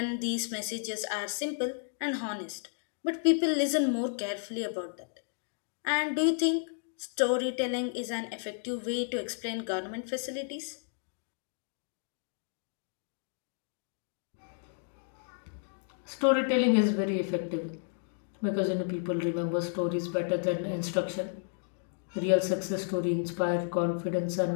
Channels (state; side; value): silent; right; digital silence